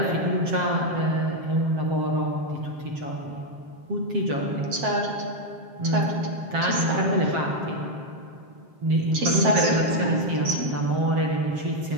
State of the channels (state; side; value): late; left; 7.6 ms